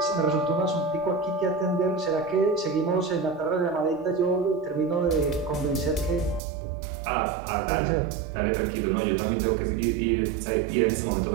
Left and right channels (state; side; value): drops out; left; at 6.4 s